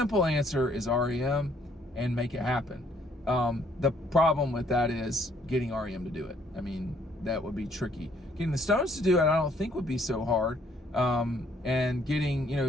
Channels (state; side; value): normal; both; correlation 0.65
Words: answer is REM and make it happen. The problem with that is getting REM to do it. I mean, that would be tricky. Getting the Stones to do it, I don't think would be so hard. And